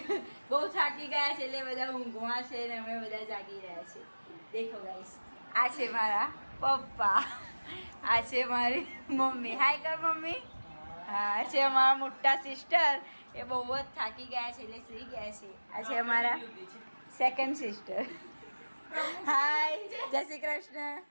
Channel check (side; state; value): both; inverted; correlation -1.00